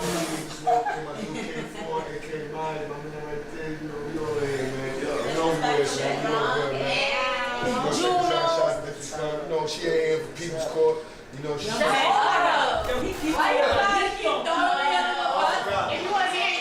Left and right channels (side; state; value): both; identical; correlation 1.00